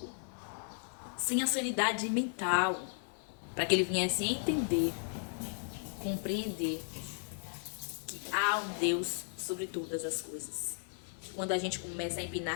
sem a sanidade mental, para que ele viesse a entender, compreender que há um Deus sobre todas as coisas. Quando a gente começa a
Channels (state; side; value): silent; right; 54 dB below the other